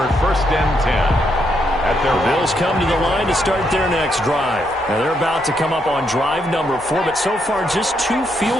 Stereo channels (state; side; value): normal; both; correlation 0.77